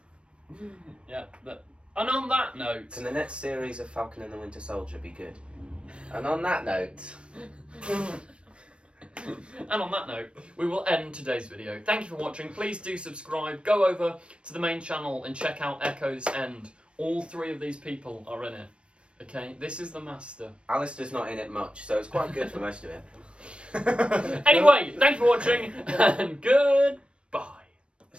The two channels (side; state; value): left; late; 0.058 ms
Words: Yeah, that And on that note... Can the next series of Falcon and the Winter Soldier be good? And on that note... And on that note, we will end today's video. Thank you for watching. Please do subscribe. Go over to the main channel and check out Echo's End. All 3 of these people are in it. Okay, this is the master. Alistair's not in it much, so it's quite good for most of it. Anyway, thank you for watching, and goodbye.